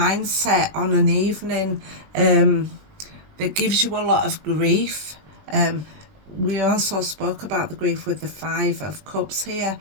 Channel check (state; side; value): late; left; 20 ms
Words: on an evening that gives you a lot of grief. We also spoke about the grief with the Five of Cups here,